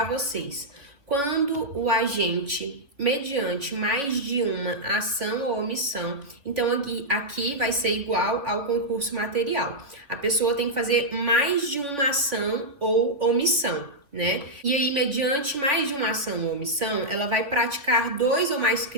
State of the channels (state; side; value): late; left; 3.5 ms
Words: vocês. Quando o agente, mediante mais de uma ação ou omissão, então aqui vai ser igual ao concurso material. A pessoa tem que fazer mais de uma ação ou omissão, né? E aí, mediante mais de uma ação ou omissão, ela vai praticar 2 ou mais